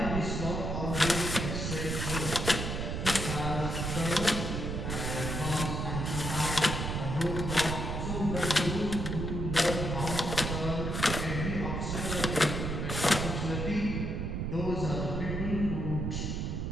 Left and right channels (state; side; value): noise; right; rumble, 2 dB below the sound